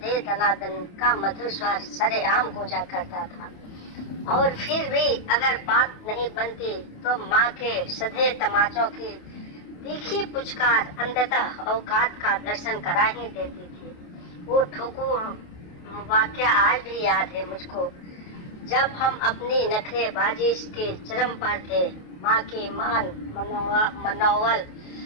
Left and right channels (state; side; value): late; right; 28 ms